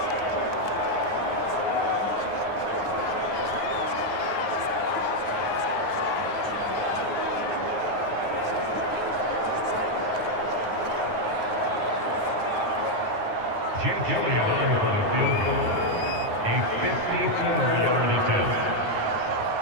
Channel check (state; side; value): late; left; 9.5 ms